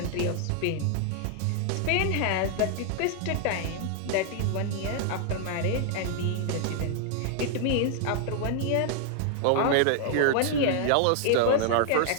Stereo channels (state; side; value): different; both; correlation 0.00